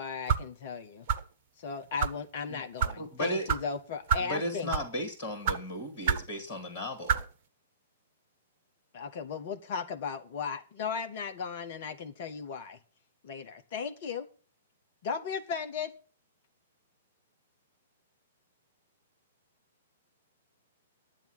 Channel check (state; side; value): inverted; both; correlation -0.38